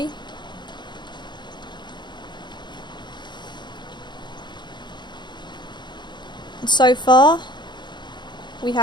And so far we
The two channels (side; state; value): right; late; 0.22 ms